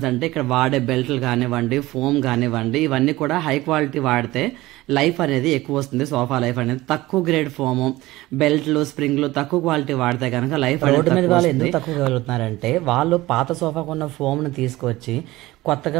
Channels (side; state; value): left; quieter; 18.3 dB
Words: అంటే ఇక్కడ వాడే బెల్ట్లు కానివ్వండి, ఫోమ్ కానివ్వండి, ఇవన్నీ కూడా హై క్వాలిటీ వాడితే లైఫ్ అనేది ఎక్కువ వస్తుంది. సోఫా లైఫ్ అనేది తక్కువ గ్రేడ్ ఫోమ్, బెల్ట్లు, స్ప్రింగ్లు తక్కువ క్వాలిటీ వాడితే కనుక లైఫ్ రోడ్డు మీద వాళ్ళు ఎందుకు తక్కువ వెళ్తున్నారంటే వాళ్ళు పాత సోఫాకు ఉన్న ఫోమ్ ను తీసుకొచ్చి